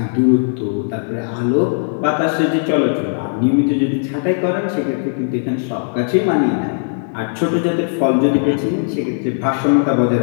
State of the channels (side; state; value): right; silent; digital silence